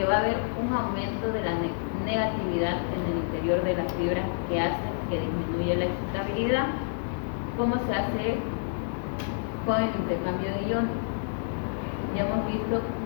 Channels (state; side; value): silent; right; digital silence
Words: va a haber un aumento de la negatividad en el interior de las fibras que hace que disminuya la excitabilidad. ¿Cómo se hace con el intercambio de iones? Ya hemos visto